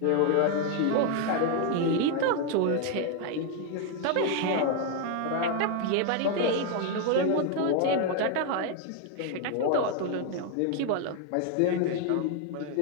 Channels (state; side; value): different; both; correlation 0.01